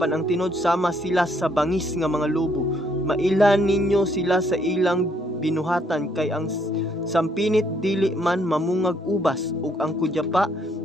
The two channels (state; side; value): normal; both; correlation 0.69